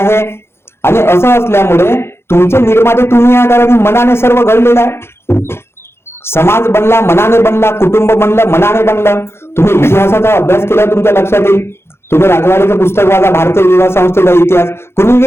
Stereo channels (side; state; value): right; late; 0.12 ms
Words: आणि असं असल्यामुळे तुमचे निर्माते तुम्ही या कारण मनाने सर्व घडलेलं आहे. समाज बनला मनाने बनला, कुटुंब बनलं मनाने बनलं. तुम्ही इतिहासाचा अभ्यास केला तुमच्या लक्षात येईल. तुम्ही राजवाडीचं पुस्तक वाचा, भारतीय विवाह संस्थेचा इतिहास, कुणी